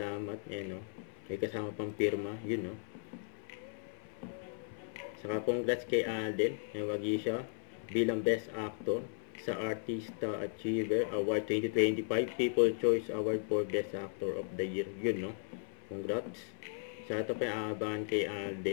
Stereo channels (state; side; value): silent; right; 54 dB below the other